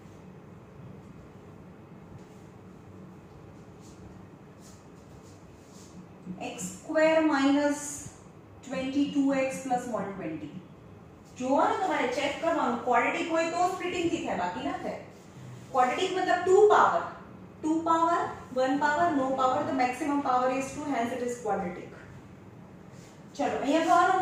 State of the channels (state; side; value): identical; both; correlation 1.00